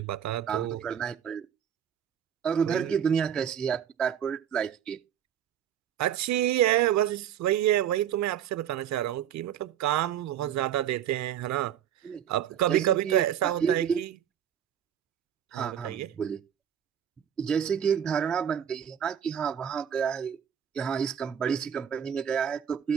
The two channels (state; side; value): quieter; left; 9.4 dB